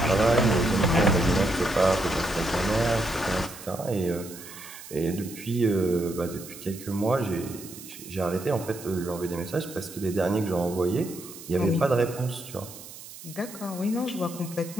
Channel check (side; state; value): right; noise; hiss, 15 dB below the sound